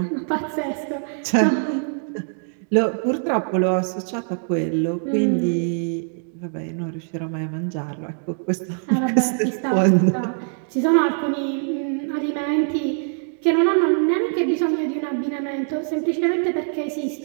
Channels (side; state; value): left; silent; digital silence